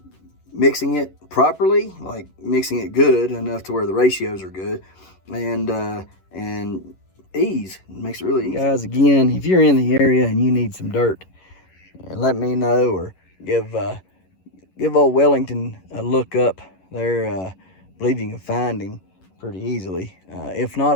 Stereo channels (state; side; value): late; right; 11 ms